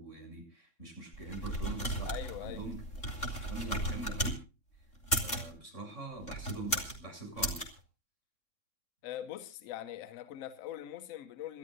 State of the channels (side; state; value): right; late; 3.6 ms